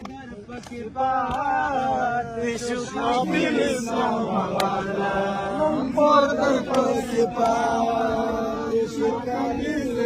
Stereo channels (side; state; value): both; identical; correlation 1.00